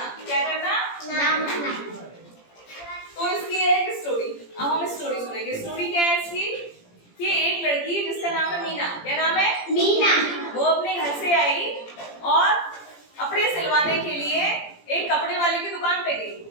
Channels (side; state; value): right; late; 17 ms